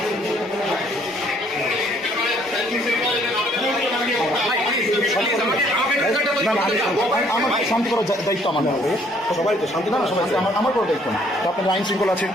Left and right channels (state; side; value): normal; both; correlation 0.63